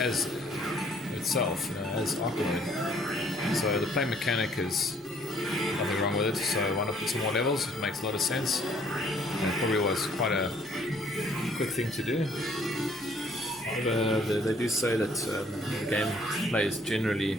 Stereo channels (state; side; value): normal; both; correlation 0.61